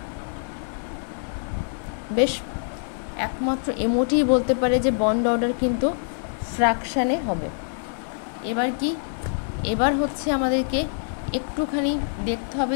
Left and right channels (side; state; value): right; silent; 62 dB below the other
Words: বেশ, একমাত্র এমওটিই বলতে পারে যে বন্ড অর্ডার কিন্তু ফ্র্যাকশানে হবে। এবার হচ্ছে আমাদেরকে একটুখানি দেখতে হবে